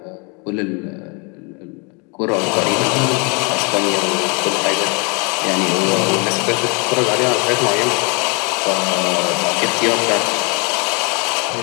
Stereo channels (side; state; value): right; quieter; 32.7 dB